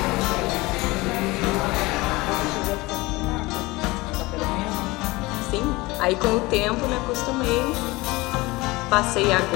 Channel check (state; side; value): quieter; right; 21.9 dB